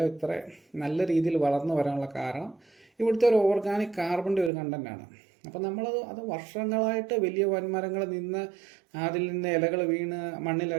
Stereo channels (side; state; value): left; drops out; at 4.5 s